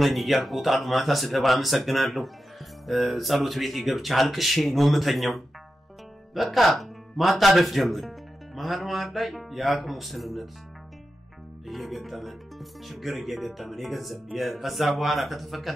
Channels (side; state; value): both; normal; correlation 0.90